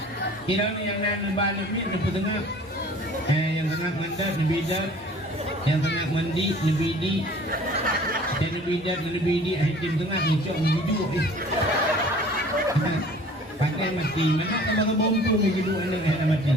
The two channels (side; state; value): both; normal; correlation 0.49